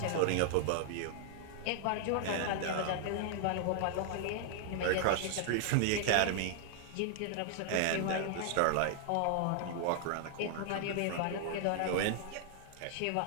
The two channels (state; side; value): different; both; correlation 0.00